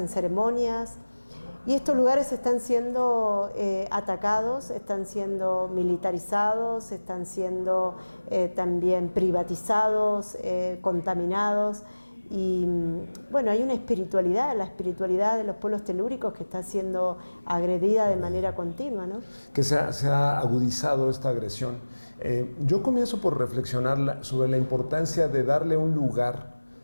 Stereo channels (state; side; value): inverted; both; correlation -1.00